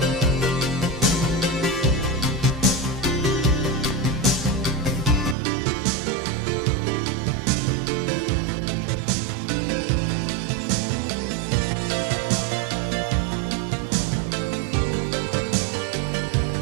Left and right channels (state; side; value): drops out; left; at 5.4 s